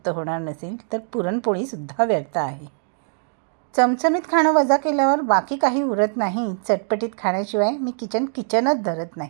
होणार नसेल तर पुरणपोळीसुद्धा व्यर्थ आहे. चमचमीत खाणं वजा केल्यावर बाकी काही उरत नाही. चटपटीत खाण्याशिवाय मी किचनच धरत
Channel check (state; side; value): silent; left; digital silence